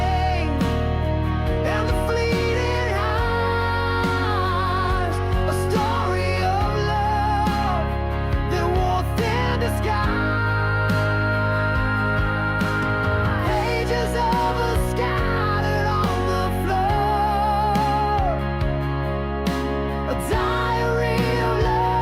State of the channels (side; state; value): both; identical; correlation 1.00